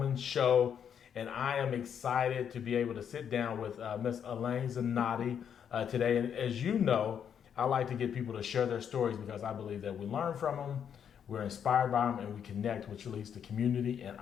Show. And I am excited to be able to sit down with Miss Alane Zannotti today. And as you know, I like to get people to share their stories because I believe that we learn from them, we're inspired by them, and we connect, which leads to community. And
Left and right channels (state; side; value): quieter; right; 8.2 dB